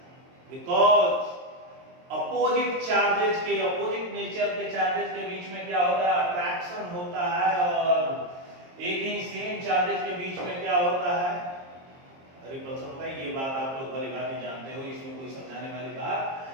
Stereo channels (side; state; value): left; late; 22 ms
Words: बिकॉज अपोजिट चार्जेस के, अपोजिट नेचर के चार्जेस के बीच में क्या होता है, अट्रैक्शन होता है, और एक ही सेम चार्जेस के बीच में क्या होता है, रिपल्सन होता है। ये बात आप लोग भली भांति जानते हो, इसमें कोई समझाने वाली